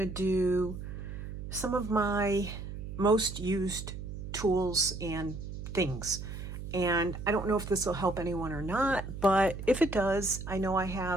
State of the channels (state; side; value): noise; right; hum, 8 dB below the sound